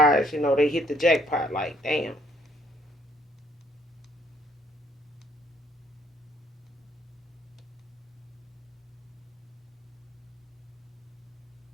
they hit the jackpot. Like, damn.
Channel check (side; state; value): both; normal; correlation 0.65